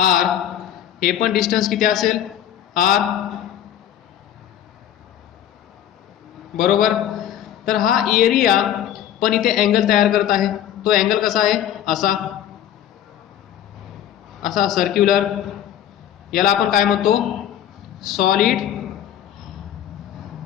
हे पण डिस्टन्स किती असेल? आर. बरोबर. तर हा एरिया पण इथे अँगल तयार करत आहे. तो अँगल कसा आहे? असा सर्क्युलर. याला आपण काय म्हणतो? Solid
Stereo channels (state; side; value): quieter; right; 10.9 dB